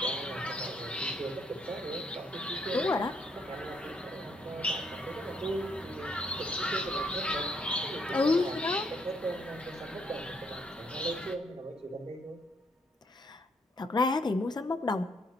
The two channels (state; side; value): normal; both; correlation 0.71